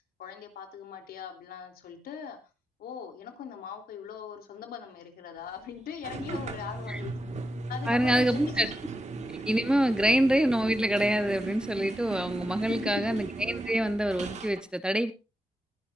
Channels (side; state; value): both; normal; correlation 0.87